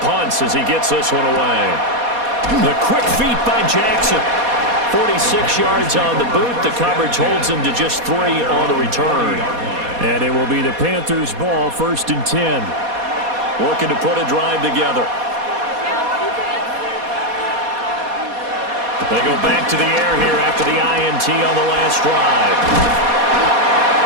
punts as he gets this one away. The quick feet by Jackson. 46 yards on the boot. The coverage holds him to just 3 on the return. And it will be the Panthers' ball, 1st and 10. Looking to put a drive together. They go back to the air here after the INT on the last drive.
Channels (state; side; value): late; left; 4.2 ms